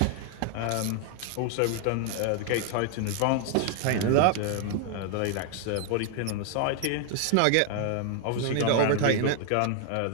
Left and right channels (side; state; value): both; different; correlation 0.00